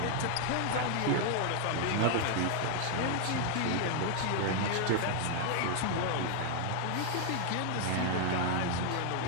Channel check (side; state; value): both; different; correlation 0.00